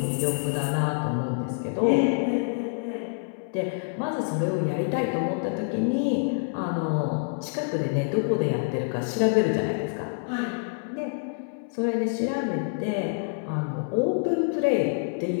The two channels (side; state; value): right; silent; 60 dB below the other